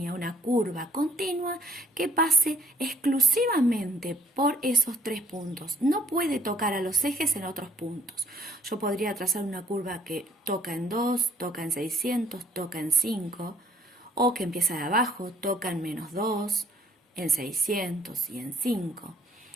una curva continua que pase exclusivamente por esos 3 puntos. No puede tocar a los ejes en otros puntos. Yo podría trazar una curva que toca en 2, toca en 600, toca en 5, o que empieza de abajo, toca en menos 2, en 600 y en 5.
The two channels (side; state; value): both; normal; correlation 0.61